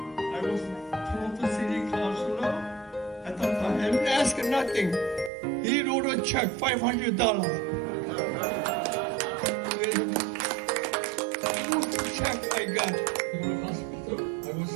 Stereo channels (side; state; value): left; drops out; at 5.3 s